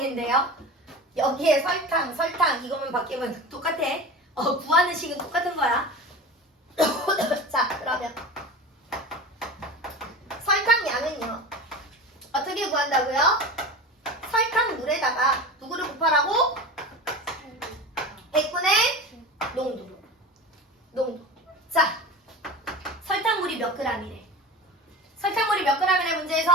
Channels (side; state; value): both; normal; correlation 0.31